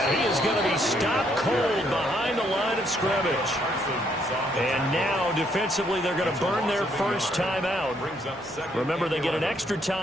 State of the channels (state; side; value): normal; both; correlation 0.71